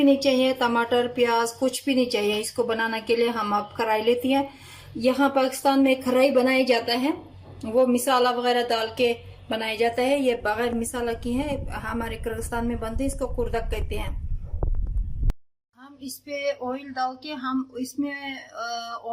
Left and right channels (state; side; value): identical; both; correlation 1.00